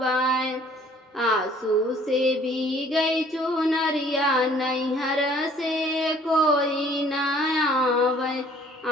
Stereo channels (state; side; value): normal; both; correlation 0.56